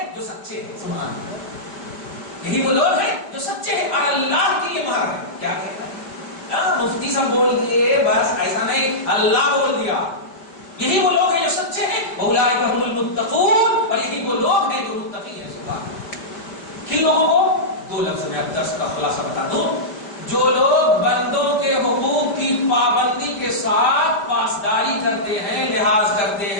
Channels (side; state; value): right; late; 5.1 ms